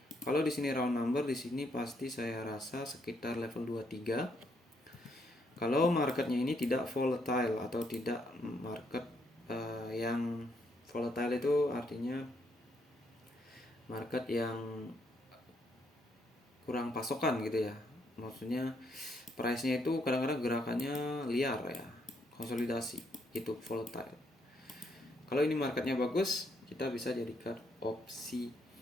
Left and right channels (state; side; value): normal; both; correlation 0.74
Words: Kalau di sini round number, di sini pasti saya rasa sekitar level 23. Kalau marketnya ini tidak volatile atau tidak market yang volatile itu artinya market yang kurang pasokan gitu ya. Maksudnya price-nya itu kadang-kadang gerakannya liar ya, konsolidasi itu volatile. Kalau ini marketnya bagus, kita bisa jadikan opsi